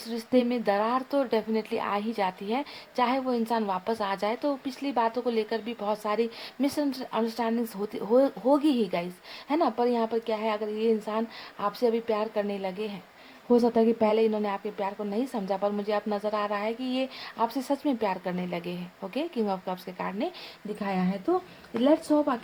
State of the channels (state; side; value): identical; both; correlation 1.00